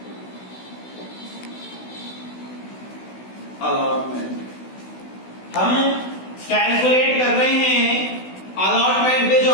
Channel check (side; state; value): right; late; 16 ms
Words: allotment. हम कैलकुलेट कर रहे हैं अलॉटमेंट पे जो